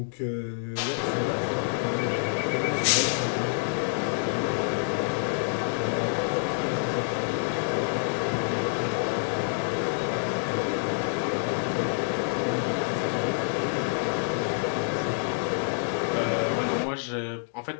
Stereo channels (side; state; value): right; silent; digital silence